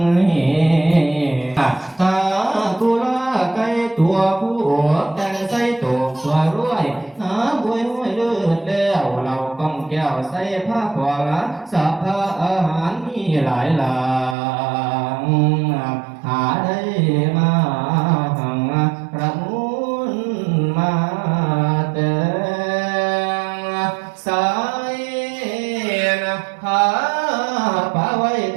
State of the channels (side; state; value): left; drops out; at 14.4 s